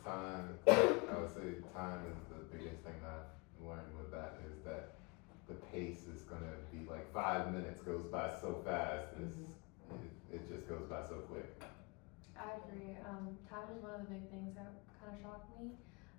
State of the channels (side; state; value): right; quieter; 27.7 dB